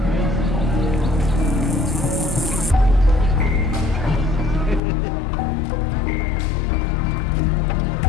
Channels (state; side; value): drops out; right; at 4.8 s